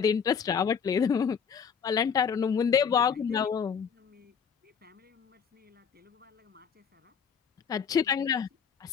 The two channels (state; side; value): quieter; right; 6.8 dB